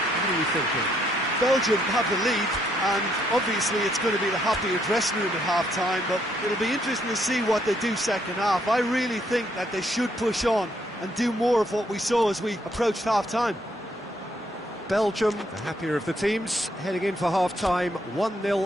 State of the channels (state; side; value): normal; both; correlation 0.72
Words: are you thinking? Belgium have the lead, and obviously it's going to be the happier dressing room at half-time, but it'll be interesting to see what they do second half. I really think that they should push on and do more of what we saw as we approached half-time. Belgium, the happier of the teams, heading in for half-time, 1-0